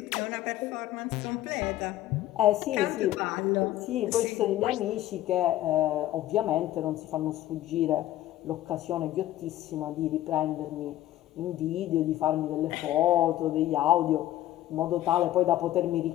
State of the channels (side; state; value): right; quieter; 13.9 dB